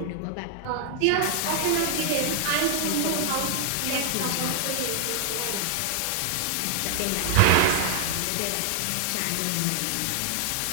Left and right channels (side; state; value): both; different; correlation 0.00